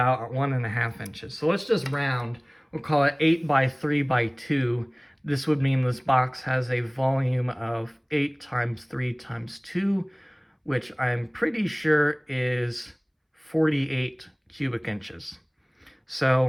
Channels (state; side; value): identical; both; correlation 1.00